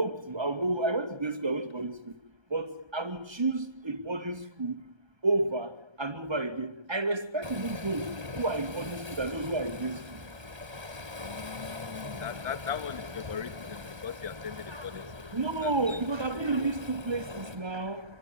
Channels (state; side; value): late; left; 1.3 ms